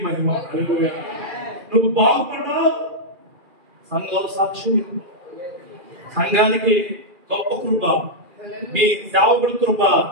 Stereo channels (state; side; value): late; left; 2.4 ms